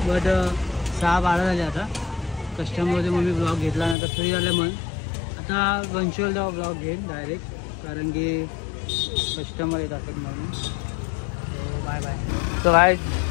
बट 6:12 झाले आता. कस्टमरमध्ये मग मी ब्लॉग घेतला, नंतर फ्री झालं म्हणून आता वंशुअलचा ब्लॉग घेईन डायरेक्ट, कारण की कस्टमर येत असतात म्हणून. Bye bye. तो काय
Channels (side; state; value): right; drops out; at 4.0 s